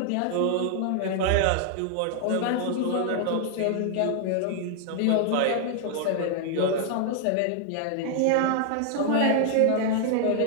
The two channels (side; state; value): both; different; correlation 0.00